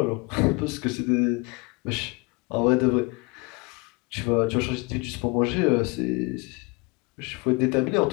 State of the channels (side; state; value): right; quieter; 27.9 dB